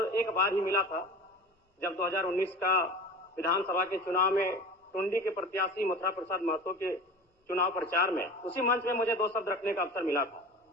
एक बार ही मिला था, जब 2019 का विधानसभा के चुनाव में टुंडी के प्रत्याशी मथुरा प्रसाद महतो के चुनाव प्रचार में उसी मंच में मुझे 2 शब्द रखने का अवसर मिला था।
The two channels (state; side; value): normal; both; correlation 0.34